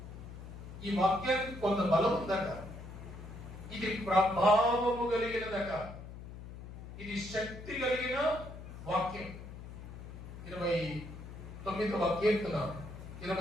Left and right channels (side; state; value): left; noise; hum, 12 dB below the sound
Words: ఈ వాక్యానికి కొంత బలం ఉందట, ఇది ప్రభావము కలిగినదట, ఇది శక్తి కలిగిన వాక్యం. 29వ